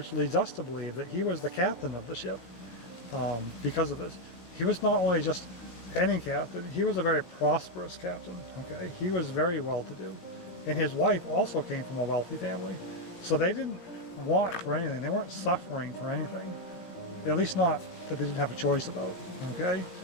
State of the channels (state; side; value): late; right; 17 ms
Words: leads us to believe that he was the captain of the ship because of this. He was not only just any captain, he was a very prosperous captain, okay? He was very well-to-do. And his wife also came from a wealthy family. So they didn't want for anything. They weren't suffering for anything. At least not that they didn't have a choice about, okay?